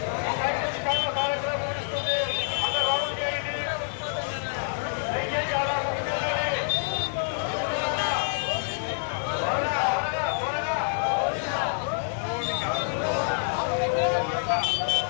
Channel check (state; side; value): silent; right; digital silence